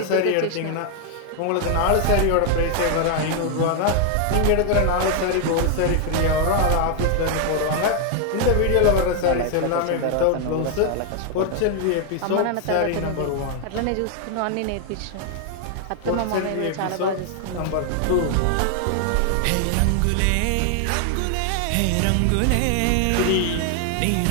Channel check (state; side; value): different; both; correlation 0.00